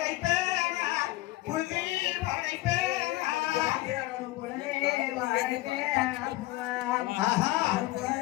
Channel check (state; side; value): quieter; right; 18.4 dB